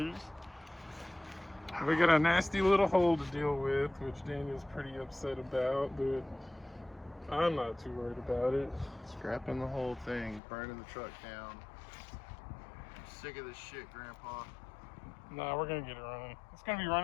We got a nasty little hole to deal with, which Daniel's pretty upset about, but I'm not too worried about it. Scrapping the whole thing, burning the truck down. Sick of this shit, Grandpa. Nah, we're gonna get it running. It's gonna be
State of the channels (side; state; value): right; drops out; at 10.4 s